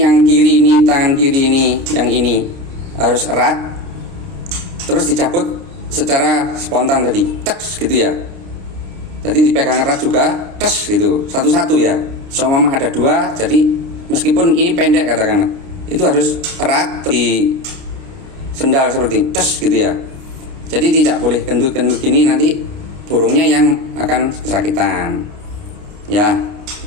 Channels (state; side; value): late; left; 29 ms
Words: yang kiri, ini tangan kiri, ini yang ini harus erat, terus dicabut secara spontan tadi, teks gitu ya. Jadi dipegang erat juga, tes gitu, satu-satu ya. Seumpama ada dua, jadi meskipun ini pendek katakanlah, itu harus erat di sendal seperti tes gitu ya. Jadi tidak boleh gendut-gendut gini, nanti burungnya yang akan kesakitan. Ya,